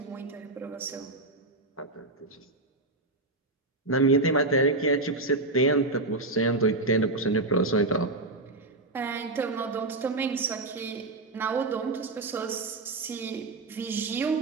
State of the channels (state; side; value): quieter; left; 3.0 dB